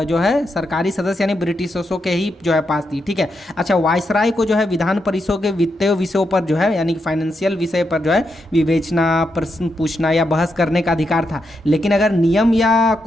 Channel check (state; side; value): normal; both; correlation 0.83